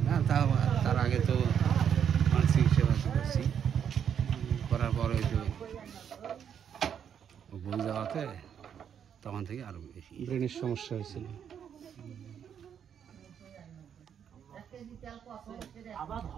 না, তার আগে তো মানসিক সেবা করছি, করার পর ওই তো ভুল যাওয়াতে তখন থেকে আরো বেশি ব্রেনের সমস্যা হয়েছিল।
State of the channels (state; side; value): quieter; left; 8.3 dB